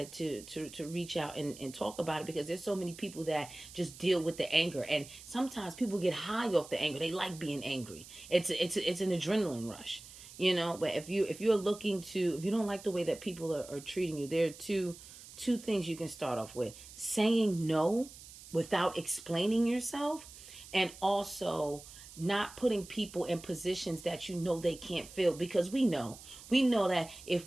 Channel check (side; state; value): right; noise; hiss, 17 dB below the sound